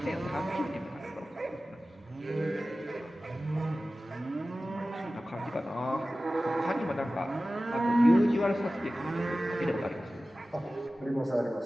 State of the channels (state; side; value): normal; both; correlation 0.96